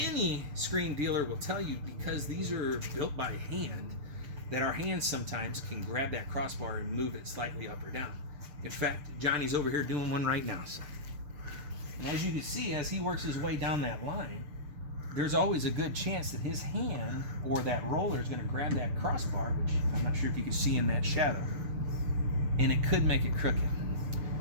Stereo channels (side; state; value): left; late; 6.7 ms